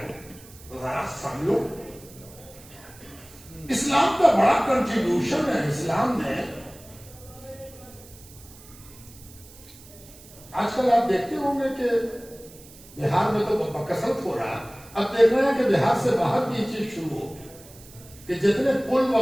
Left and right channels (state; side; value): noise; right; hiss, 21 dB below the sound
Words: ذرا سمجھو. اسلام کا بڑا کنٹریبیوشن ہے. اسلام نے آج کل آپ دیکھتے ہوں گے کہ بہار میں تو بکثرت ہو رہا, اب دیکھ رہے ہیں کہ بہار سے باہر بھی یہ چیز شروع ہو کہ جتنے پل